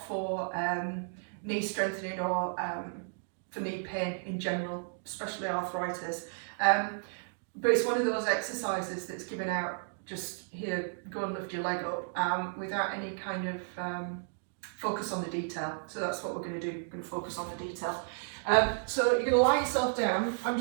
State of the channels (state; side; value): silent; left; digital silence